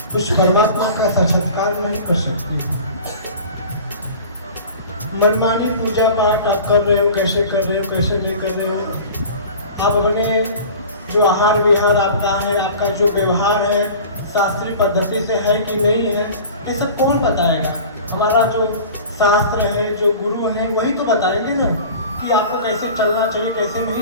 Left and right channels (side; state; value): both; inverted; correlation -0.40